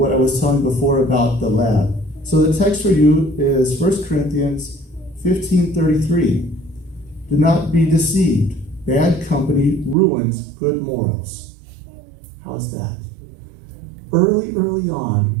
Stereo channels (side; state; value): left; drops out; at 10.0 s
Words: I was telling before about the lab. So the text for you is 1 Corinthians 15:33. Do not be deceived. Bad company ruins good morals. How's that? Early